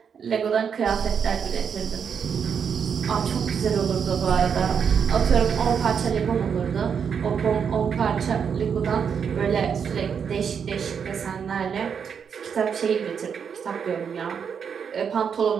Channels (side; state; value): left; quieter; 7.0 dB